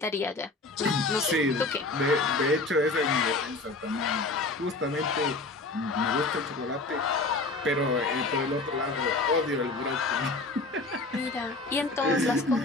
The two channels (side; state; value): right; quieter; 3.2 dB